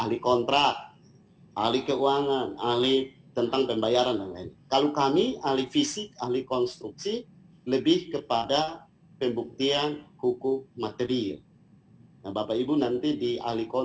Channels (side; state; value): both; identical; correlation 1.00